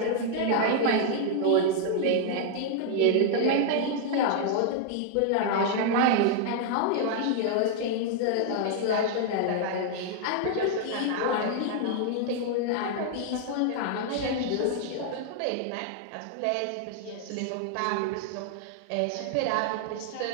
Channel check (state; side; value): different; both; correlation 0.00